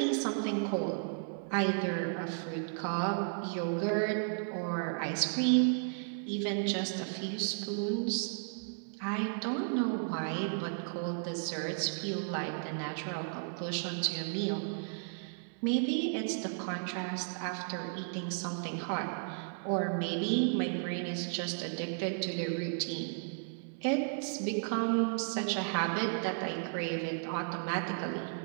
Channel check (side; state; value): left; silent; 55 dB below the other